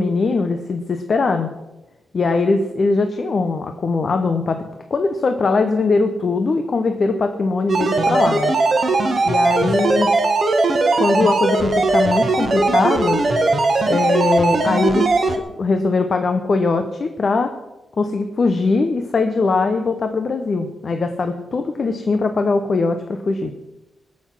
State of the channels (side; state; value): both; normal; correlation 0.85